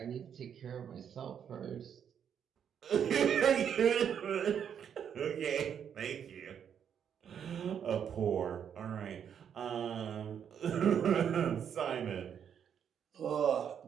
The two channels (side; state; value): left; quieter; 8.3 dB